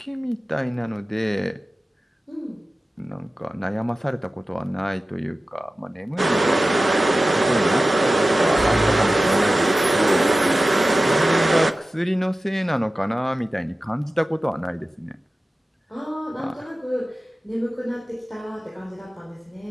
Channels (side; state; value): both; normal; correlation 0.95